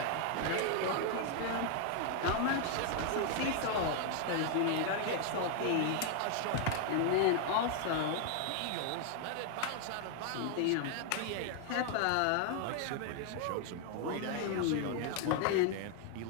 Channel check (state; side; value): different; both; correlation 0.00